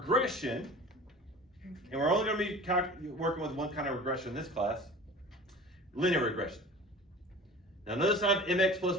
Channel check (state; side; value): normal; both; correlation 0.39